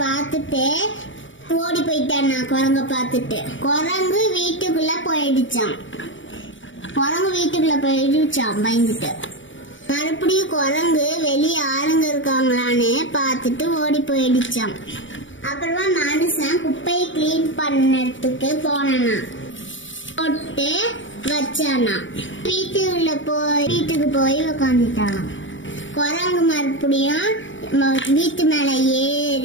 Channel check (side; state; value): right; late; 0.56 ms